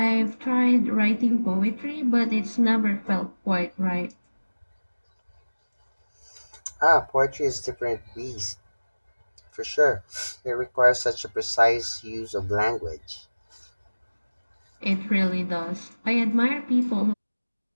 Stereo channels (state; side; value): inverted; both; correlation -1.00